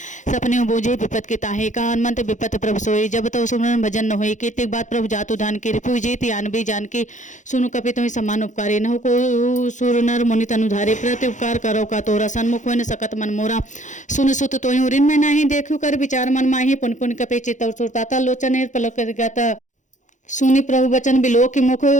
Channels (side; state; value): right; late; 0.36 ms